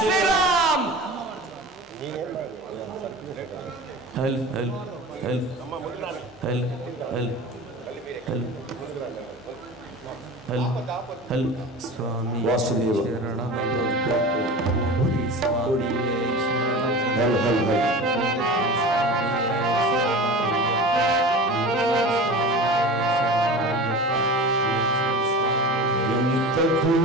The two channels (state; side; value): normal; both; correlation 0.34